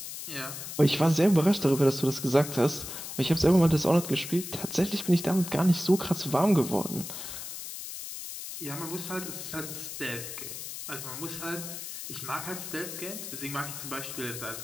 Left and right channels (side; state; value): left; noise; hiss, 9 dB below the sound